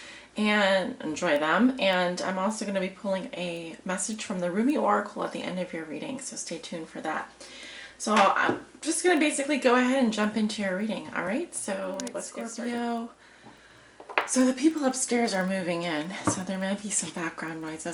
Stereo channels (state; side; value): identical; both; correlation 1.00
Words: and enjoy them. And I'm also going to be pulling a message from the Ruby Oracle at the end of your reading, so stay tuned for that. So I'm just going to basically go ahead and jump into your reading. All right, so let's get started. So the people upstairs are moving in, so there may be some background